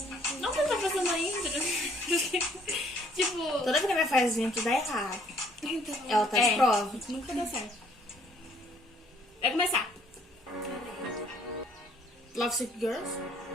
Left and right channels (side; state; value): both; normal; correlation 0.62